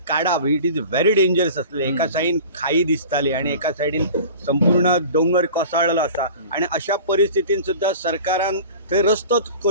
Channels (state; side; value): inverted; both; correlation -0.40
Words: काडप इट इज व्हेरी डेंजरस आसलें. एका सायडीन खाई दिसताली आणि एका सायडीन संपूर्ण डोंगर कोसळलेलो आसा आणि अशा परिस्थितीन सुद्दां सरकारान थंय रस्तोच